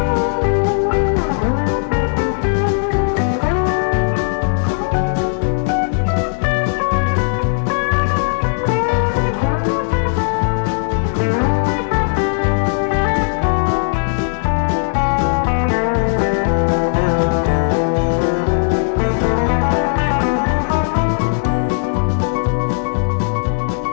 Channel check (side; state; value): right; silent; digital silence